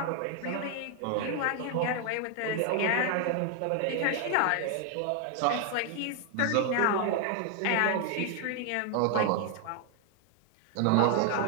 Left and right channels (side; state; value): both; different; correlation 0.00